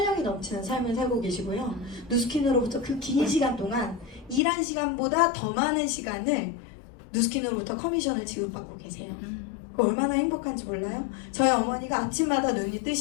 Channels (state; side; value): drops out; right; at 4.4 s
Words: 넘치는 삶을 살고 계시고요. 누스킨으로부터 그 긴 시간 동안 일한 시간보다 더 많은 시간을 누스킨으로부터 커미션을 지급받고 계세요. 얼마나 행복한지 몰라요? 저희 어머니가 아침마다 눈이